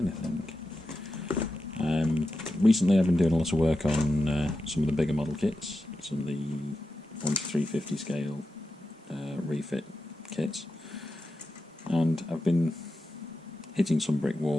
Recently I've been doing a lot of work on some of the bigger model kits, some of the 1:350 scale refit kits, and I've been hitting some brick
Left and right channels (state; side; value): normal; both; correlation 0.90